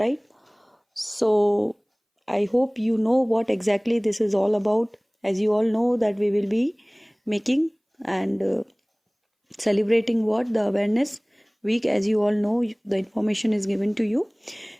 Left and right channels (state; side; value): identical; both; correlation 1.00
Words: So I hope you know what exactly this is all about. as you all know that we will be making and celebrating what the awareness week. As you all know, the information is given to you.